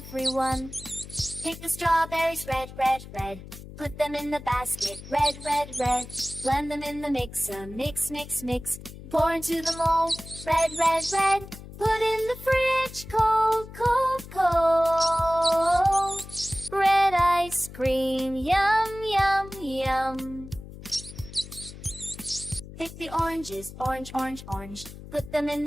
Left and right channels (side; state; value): left; noise; hum, 15 dB below the sound